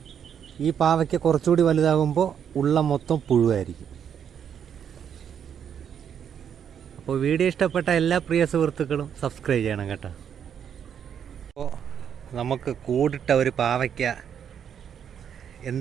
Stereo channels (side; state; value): left; quieter; 8.3 dB